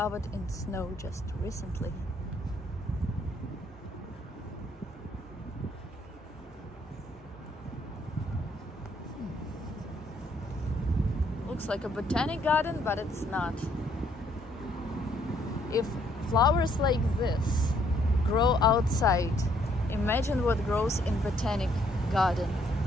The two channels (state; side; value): normal; both; correlation 0.68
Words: in snow just recently. Looks like a botanic garden, but it's not. If flowers like this grow outside, imagine what grows in botanic garden